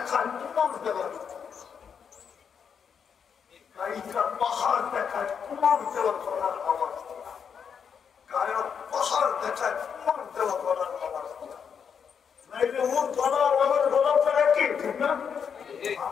তোমার দেওয়া গায়িকার পাহাড় দেখায় তোমার দেওয়া করার আওয়াজ গায়ক পাহাড় দেখায় তোমার দেওয়া করার আওয়াজ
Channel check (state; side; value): quieter; right; 7.0 dB